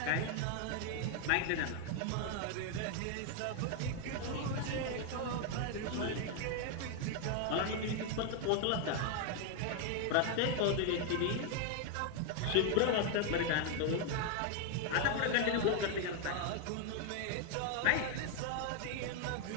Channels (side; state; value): both; different; correlation 0.01